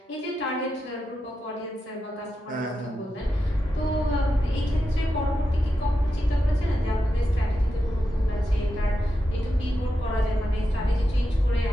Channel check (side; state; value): both; normal; correlation 0.88